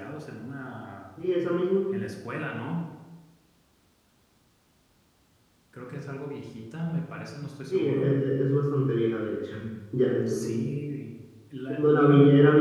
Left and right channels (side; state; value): both; identical; correlation 1.00